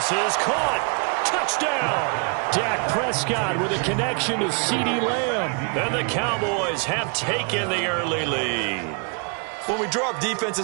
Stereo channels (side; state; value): left; quieter; 35.9 dB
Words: is caught. Touchdown! Dak Prescott with a connection to CeeDee Lamb. And the Cowboys have taken the early lead. When we draw up